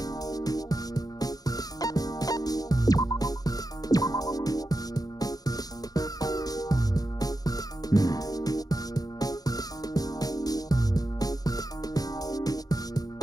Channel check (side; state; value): right; late; 0.18 ms